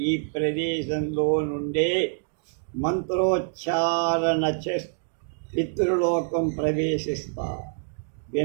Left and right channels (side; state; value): left; silent; digital silence